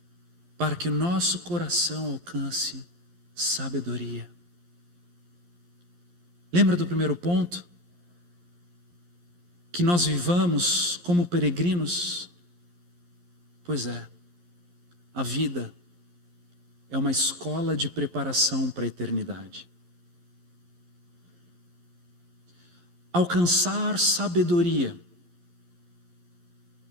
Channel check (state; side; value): late; left; 11 ms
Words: para que o nosso coração alcance sabedoria. Lembra do primeiro ponto? Que nós vivamos como peregrinos? Pois é, a vida é uma escola de preparação para a eternidade. Alcançar sabedoria